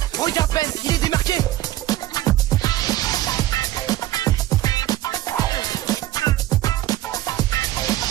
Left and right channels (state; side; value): quieter; left; 14.8 dB